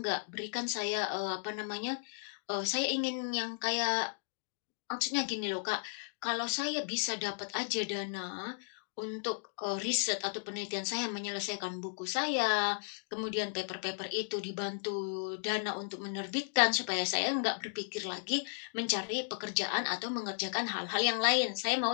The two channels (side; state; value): right; silent; digital silence